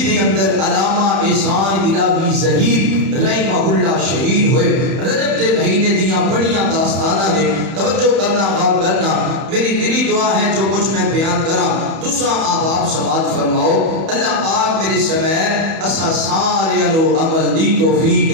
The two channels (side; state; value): left; late; 31 ms